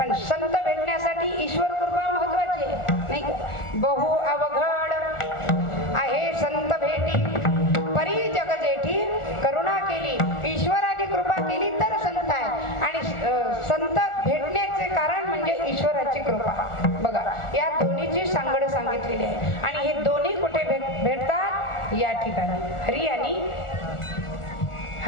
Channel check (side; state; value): right; late; 1.4 ms